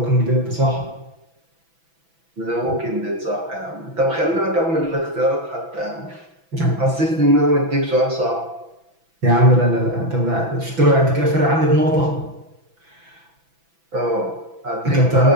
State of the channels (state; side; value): late; left; 6.0 ms